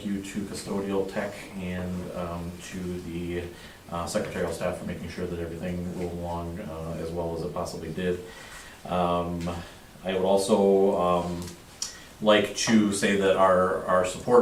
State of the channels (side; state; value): both; identical; correlation 1.00